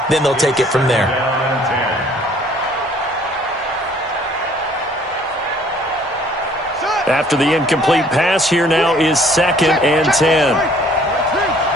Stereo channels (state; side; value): normal; both; correlation 0.58